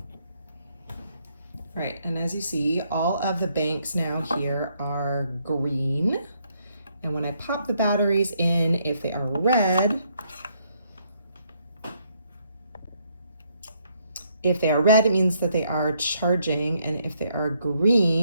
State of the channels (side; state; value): both; inverted; correlation -0.72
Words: Right, and as you see, all of the banks now here are green. And when I pop the batteries in, if they are red, it means that they are charging. And if they are